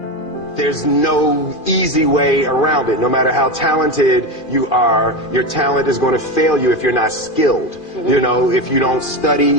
There's no easy way around it. No matter how talented you are, your talent is going to fail you if you're not skilled. You know, if you don't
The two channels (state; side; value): late; right; 2.4 ms